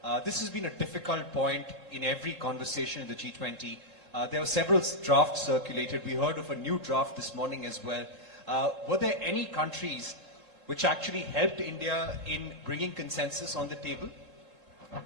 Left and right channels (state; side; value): late; left; 3.7 ms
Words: This has been a difficult point in every conversation in the G20. There were several drafts circulated. We heard of a new draft this morning as well. Were there any countries which actually helped India in bringing consensus on the table?